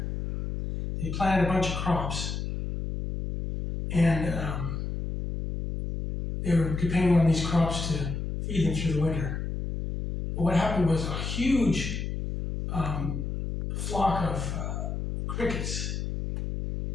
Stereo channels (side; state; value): left; noise; hum, 4 dB below the sound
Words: they planted a bunch of crops, and they were depending on these crops to feed them through the winter. But what happened was a huge flock of crickets